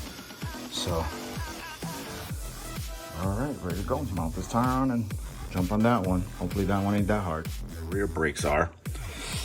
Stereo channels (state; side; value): identical; both; correlation 1.00